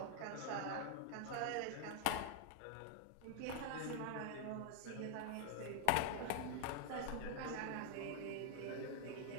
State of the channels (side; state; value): both; different; correlation 0.00